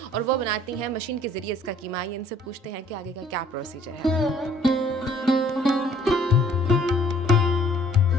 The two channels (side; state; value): both; normal; correlation 0.57